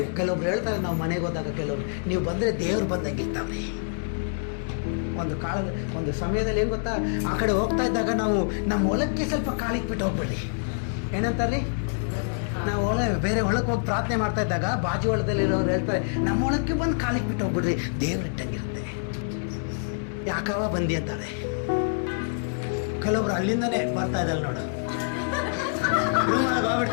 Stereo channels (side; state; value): right; silent; digital silence